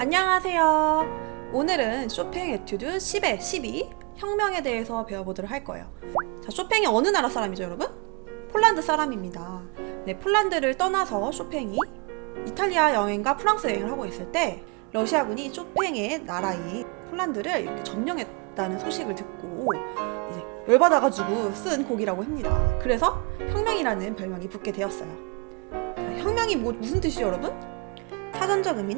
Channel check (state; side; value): quieter; left; 31.5 dB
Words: 오늘은 쇼팽 에튜드 10의 12 혁명에 대해서 배워보도록 할 거예요. 자, 쇼팽이 어느 나라 사람이죠, 여러분? 폴란드 사람입니다. 네, 폴란드를 떠나서 쇼팽이 이탈리아 여행과 프랑스 여행을 하고 있을 때 러시아군이 쇼팽의 나라인 폴란드를 이렇게 점령했다는 소식을 듣고 이제 열받아가지고 쓴 곡이라고 합니다. 그래서 혁명이라는 별명이 붙게 되었어요. 자, 혁명이 무슨 뜻이죠, 여러분? 사전적